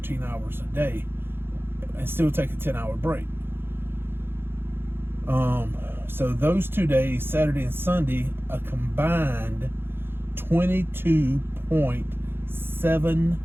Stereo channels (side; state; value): left; late; 0.10 ms